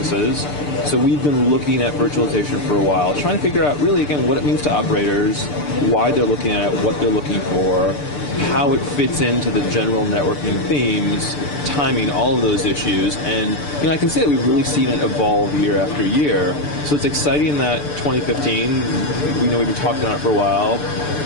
So we've been looking at virtualization for a while, trying to figure out really, again, what it means to operators, why they're looking at it, what they're looking for, how it fits into the general networking themes, timing, all of those issues. And I can say that we've really seen it evolve year after year. So it's exciting that 2015, we know we've been talking about it for a while,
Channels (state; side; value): late; right; 6.8 ms